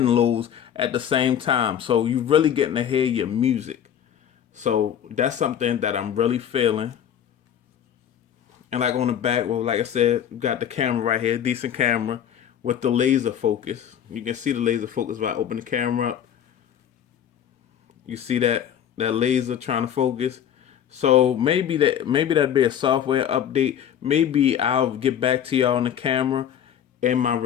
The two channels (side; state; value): right; quieter; 9.5 dB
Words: lows at the same time. So you really getting to hear your music. So that's something that I'm really feeling. And like on the back, well, like I said, we got the camera right here, decent camera with the laser focus. You can see the laser focus if I open the camera up. You see that laser trying to focus. So maybe that'd be a software update. Maybe I'll get back to y'all on the camera in my